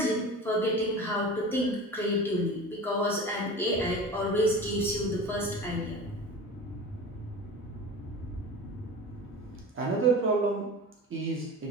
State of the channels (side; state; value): both; normal; correlation 0.34